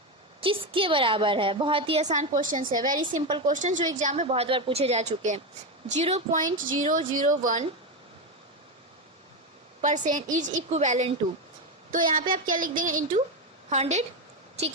किसके बराबर है. बहुत ही आसान क्वेश्चन है, वेरी सिंपल क्वेश्चन, जो एग्जाम में बहुत बार पूछे जा चुके हैं. 0.001% इज इक्विवेलेंट टू, तो यहाँ पे आप क्या लिख देंगे, इंटू 100.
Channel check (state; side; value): normal; both; correlation 0.12